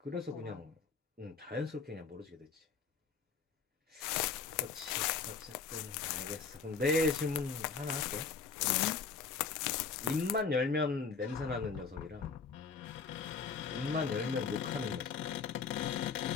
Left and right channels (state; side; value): quieter; right; 5.4 dB